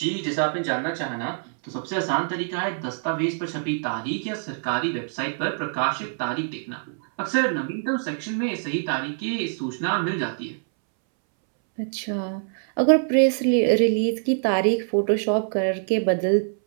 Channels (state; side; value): silent; left; 62 dB below the other